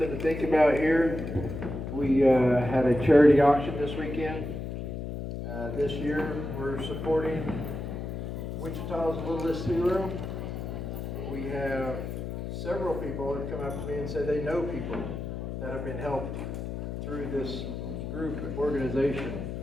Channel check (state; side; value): noise; left; hum, 5 dB below the sound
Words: to think about here, we had a charity auction this weekend. This year, we're supporting Wichita's Littlest Hero. We have several people that come up to me and say they know people that have been helped through this group organization.